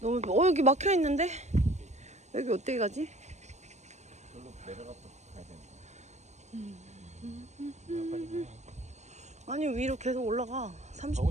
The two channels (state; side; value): late; left; 0.33 ms